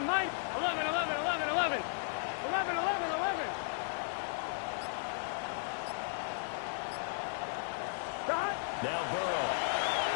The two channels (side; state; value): right; silent; digital silence